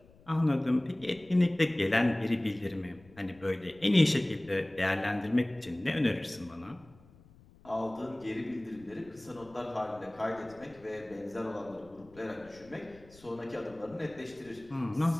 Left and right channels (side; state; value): left; noise; rumble, 25 dB below the sound